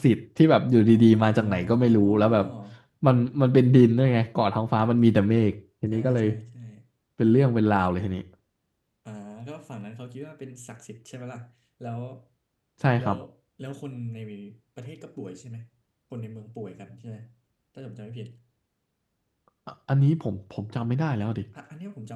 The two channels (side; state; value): both; identical; correlation 1.00